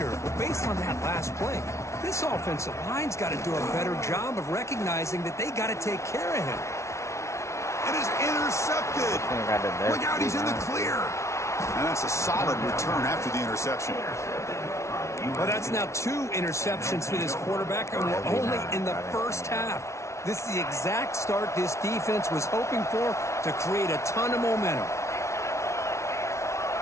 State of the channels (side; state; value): right; late; 0.13 ms